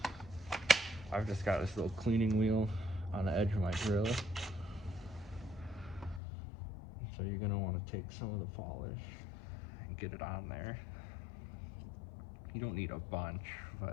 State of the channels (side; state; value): right; drops out; at 6.2 s